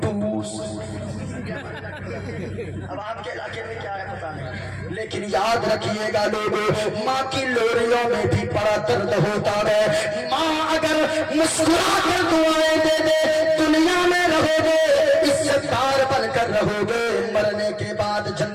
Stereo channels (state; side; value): identical; both; correlation 1.00